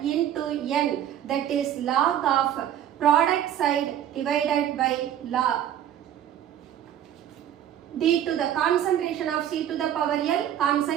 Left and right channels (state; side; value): quieter; left; 10.6 dB